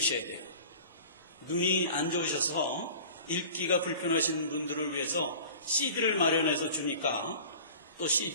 돼요. 눈이 안 좋으셔서 읽기가 불편하신 분들을 위해서 CD를 마련해서 주니까 또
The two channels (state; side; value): inverted; both; correlation -0.42